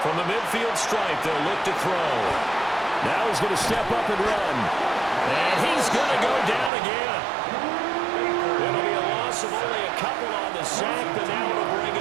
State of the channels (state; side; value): drops out; left; at 6.7 s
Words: From the midfield stripe, they'll look to throw. Now he's going to step up and run. And he's going to go down again. It'll be a loss of only a couple on the sack, but now it'll